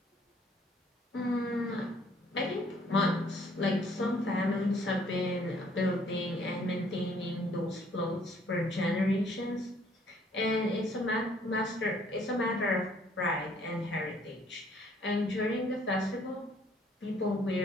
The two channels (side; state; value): both; normal; correlation 0.62